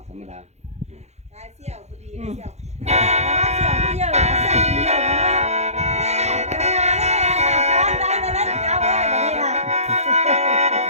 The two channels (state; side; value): late; left; 0.32 ms